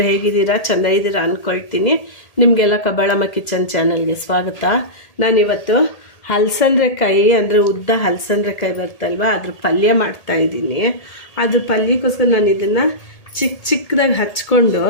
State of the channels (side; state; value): right; late; 1.8 ms